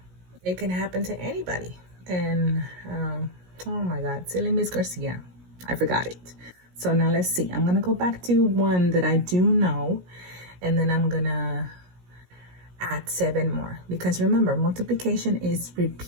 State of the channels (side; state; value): left; late; 17 ms